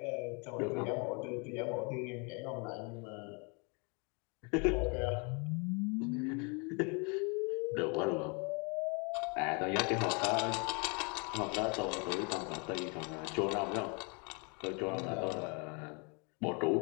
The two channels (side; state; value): right; quieter; 33.2 dB